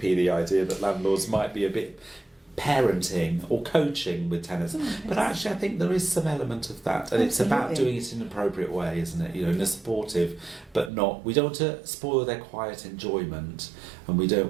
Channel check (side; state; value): left; drops out; at 10.9 s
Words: the idea that landlords might be a bit parenting or coaching with tenants. But actually I think there is some element of that, and it's about doing it in an appropriate way, isn't it? In a supportive, but not, we don't want to spoil their quiet enjoyment, and we don't